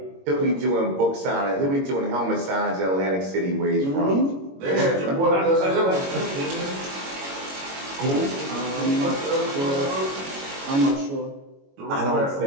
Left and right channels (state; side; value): late; left; 22 ms